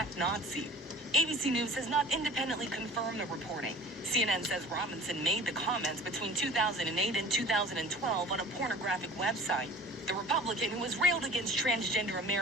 Nazi. ABC News has not independently confirmed the reporting. CNN says Robinson made the comments between 2008 and 2012 on a pornographic website. The Republican, who has railed against transgender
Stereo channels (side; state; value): both; normal; correlation 0.43